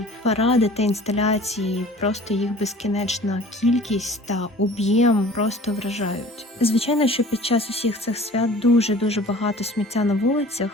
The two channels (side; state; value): both; normal; correlation 0.46